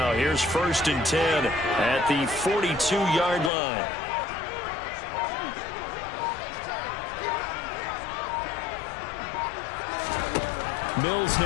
Here's 1st and 10 at the 42-yard line. Mills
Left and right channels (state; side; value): drops out; right; at 3.5 s